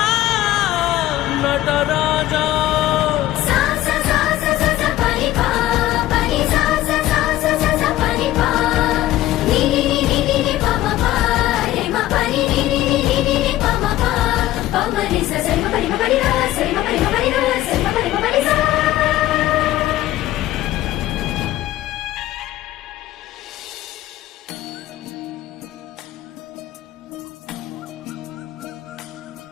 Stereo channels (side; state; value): right; quieter; 14.9 dB